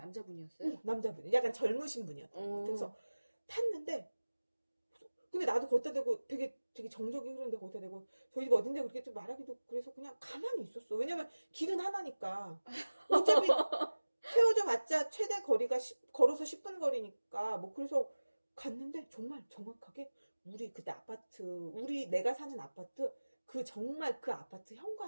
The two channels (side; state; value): both; inverted; correlation -1.00